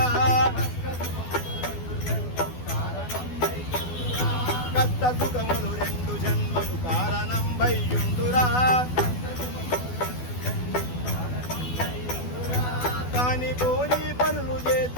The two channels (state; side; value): late; right; 12 ms